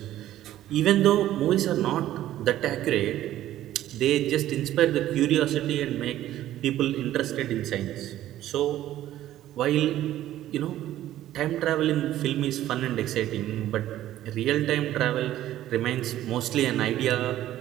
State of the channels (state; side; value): quieter; left; 13.3 dB